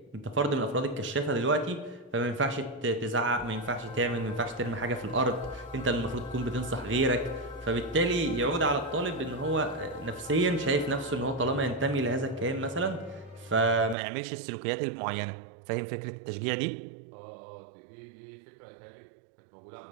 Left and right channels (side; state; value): left; drops out; at 14.0 s